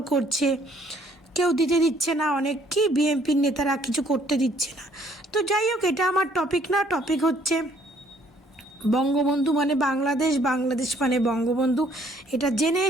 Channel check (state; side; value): normal; both; correlation 0.63